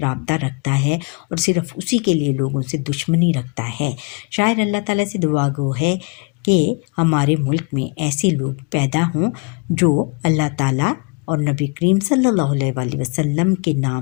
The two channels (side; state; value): right; quieter; 32.5 dB